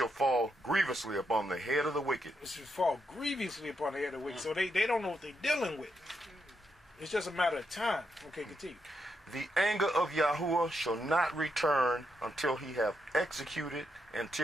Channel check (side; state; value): both; normal; correlation 0.81